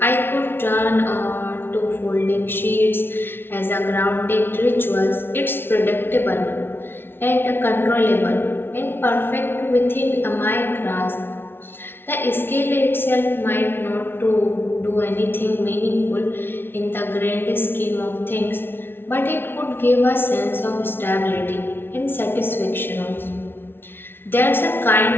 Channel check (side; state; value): right; late; 0.11 ms